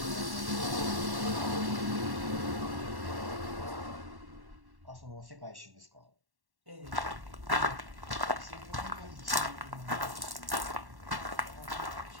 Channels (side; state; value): left; late; 1.1 ms